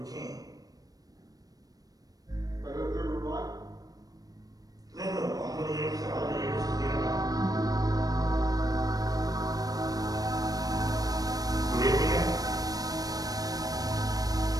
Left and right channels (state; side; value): late; left; 0.18 ms